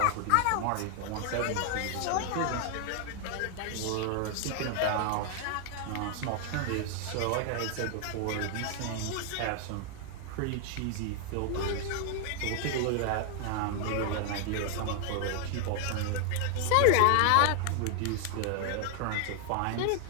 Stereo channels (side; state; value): both; different; correlation 0.00